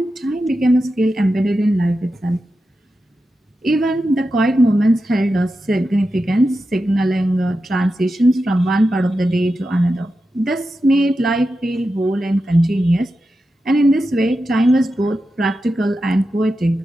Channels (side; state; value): both; normal; correlation 0.90